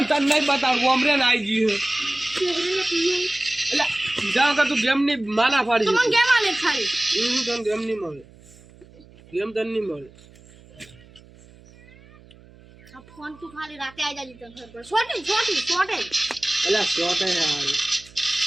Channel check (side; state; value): right; noise; hum, 24 dB below the sound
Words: તને નહીં બતાવું ઓમરે ને આવી ગયું એટલે જાવ કે તું ગેમ ની માના ફાડી તો મને ગેમ આલે ખાલી તને ગેમ નહીં મળે ગેમ તને નહીં મળે આ ફોન તું ખાલી રાતે આવી જાજી તને ખબર પડે છોટી એટલે શોટ હે યાર